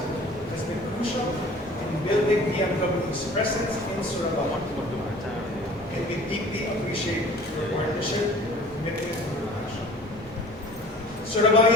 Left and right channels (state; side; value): normal; both; correlation 0.46